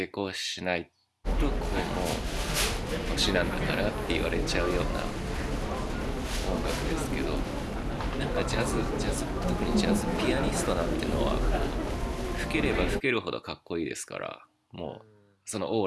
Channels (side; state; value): both; identical; correlation 1.00